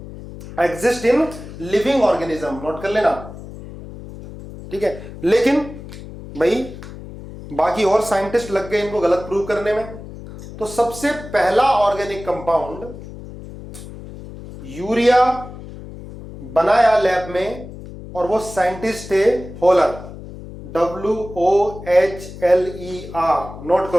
exist in living organism, note कर लेना। ठीक है, लेकिन भाई बाकी और साइंटिस्ट लग गए इनको गलत प्रूव करने में। तो सबसे पहला ऑर्गेनिक कंपाउंड यूरिया बनाया लैब में, और वो साइंटिस्ट थे होलर, WOHLER, नोट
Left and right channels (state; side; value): noise; left; hum, 14 dB below the sound